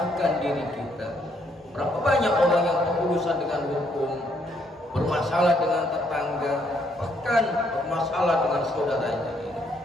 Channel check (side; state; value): both; normal; correlation 0.71